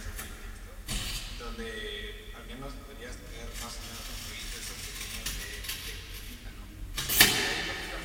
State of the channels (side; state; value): both; identical; correlation 1.00